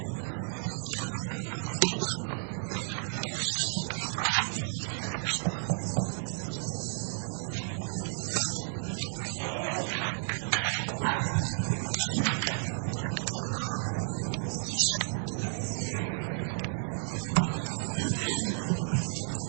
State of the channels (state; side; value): silent; left; 56 dB below the other